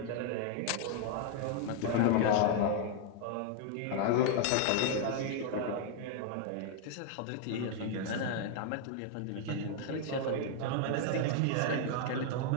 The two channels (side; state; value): both; different; correlation 0.00